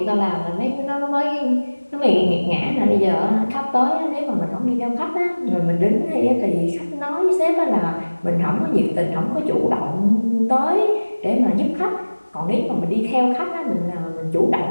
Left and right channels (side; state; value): both; inverted; correlation -1.00